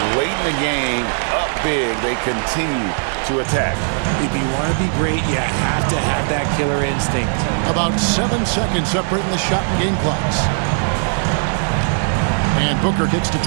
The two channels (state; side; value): silent; left; 67 dB below the other